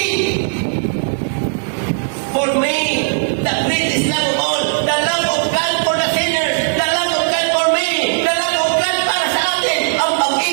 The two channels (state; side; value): silent; left; digital silence